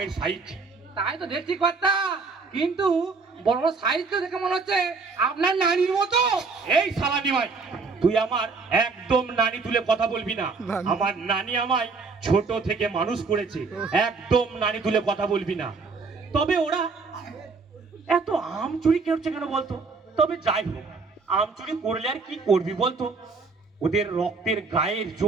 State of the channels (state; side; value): quieter; left; 4.4 dB